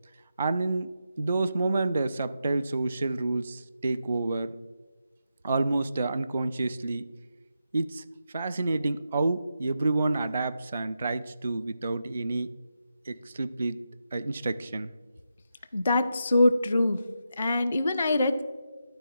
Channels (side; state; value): both; inverted; correlation -0.86